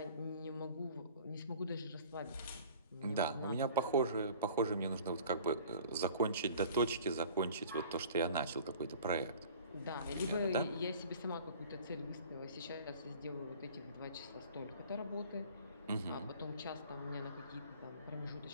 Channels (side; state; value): both; inverted; correlation -0.47